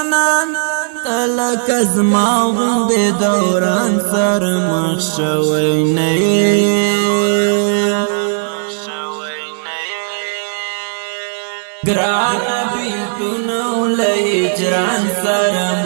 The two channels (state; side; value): silent; left; digital silence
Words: تلک از ما غند دوران سر مخشوی نئی گران بیلتونو لهجران سر